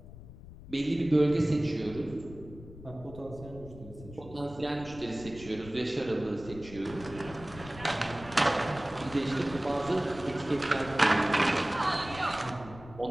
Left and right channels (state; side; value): noise; left; rumble, 16 dB below the sound